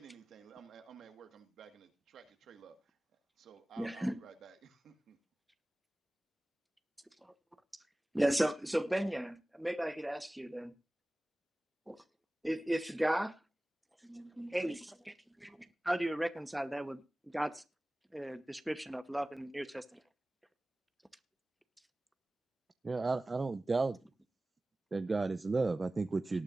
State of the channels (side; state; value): both; normal; correlation 0.98